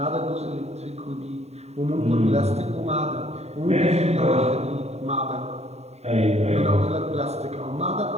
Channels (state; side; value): late; left; 0.31 ms